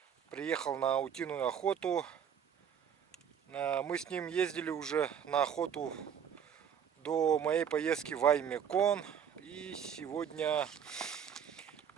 приехал на утиную охоту. Мы с ним ездили уже на охоту до моей поездки в Аймекон. И сегодня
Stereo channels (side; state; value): left; quieter; 8.2 dB